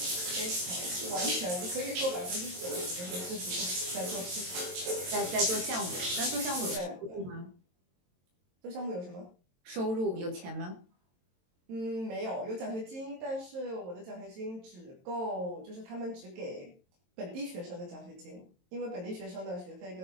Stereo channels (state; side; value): late; left; 22 ms